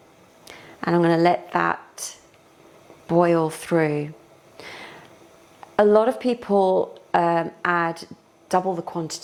And I'm going to let that boil through. A lot of people add double the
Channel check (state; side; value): identical; both; correlation 1.00